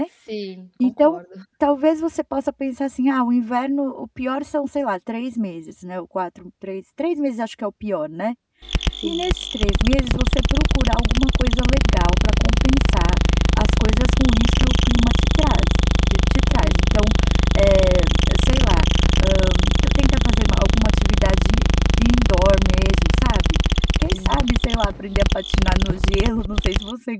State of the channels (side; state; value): both; identical; correlation 1.00